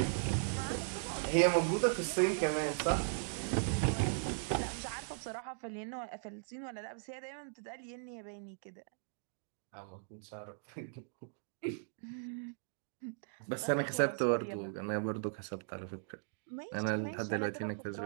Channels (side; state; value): left; silent; digital silence